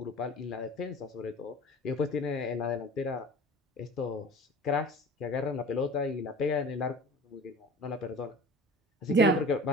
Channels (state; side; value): normal; both; correlation 0.40